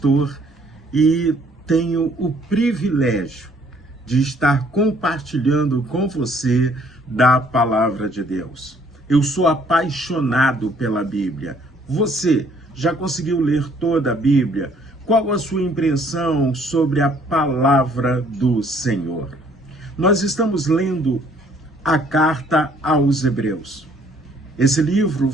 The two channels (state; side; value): normal; both; correlation 0.62